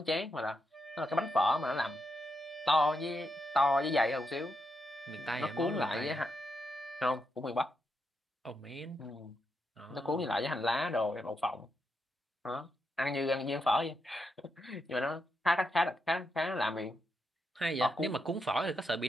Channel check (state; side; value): normal; both; correlation 0.83